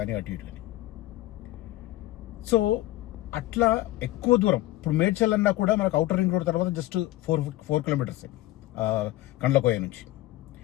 అటు ఇటు కానీ. సో అట్లా ఎక్కువ దూరం. ఇప్పుడు మేడ్చల్ అన్నా కూడా మనకు ఔటర్ రింగ్ రోడ్ తర్వాత జస్ట్ 4 కిలోమీటర్సే కండ్లకోయ నుంచి.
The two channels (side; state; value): right; quieter; 16.4 dB